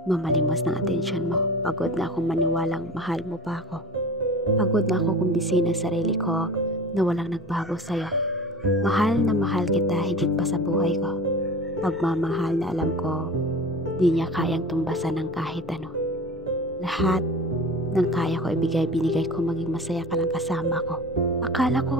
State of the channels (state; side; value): normal; both; correlation 0.36